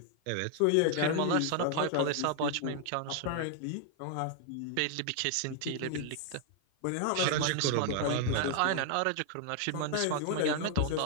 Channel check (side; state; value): both; different; correlation 0.00